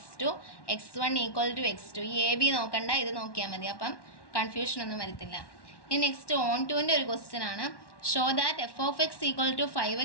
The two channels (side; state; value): right; late; 1.1 ms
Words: x1 equal to x2. ഈ എ ബി നോക്കണ്ട, ഇത് നോക്കിയാൽ മതി. അപ്പം കൺഫ്യൂഷനൊന്നും വരത്തില്ല. ഇനി നെക്സ്റ്റ് ഓൺ ടുവിൻ്റെ ഒരു ക്വസ്റ്റ്യൻ ആണ്. Show that f of x equal to